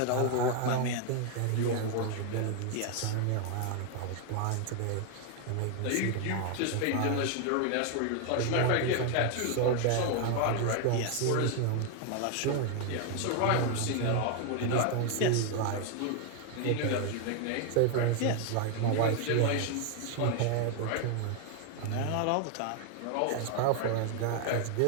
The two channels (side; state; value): both; different; correlation 0.00